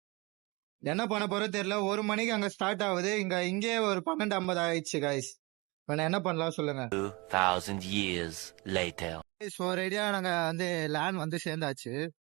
என்ன பண்ண போறோம் தெரியல. 1 மணிக்கு அங்க ஸ்டார்ட் ஆகுது. இங்கே ஒரு 12:50 ஆயிடுச்சு கைஸ். என்ன பண்ணலாம் சொல்லுங்க. 2000 years later. ஒரு ஐடியா. நாங்க வந்து லேண்ட் வந்து சேர்ந்தாச்சு.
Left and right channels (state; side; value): quieter; left; 25.5 dB